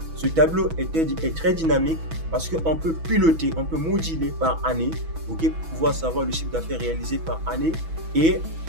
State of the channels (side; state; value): left; late; 6.1 ms